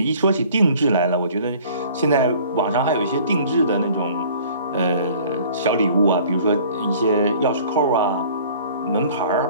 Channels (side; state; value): both; inverted; correlation -0.51